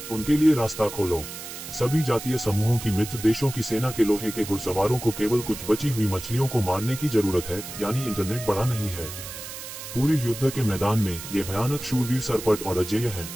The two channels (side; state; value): right; noise; hiss, 10 dB below the sound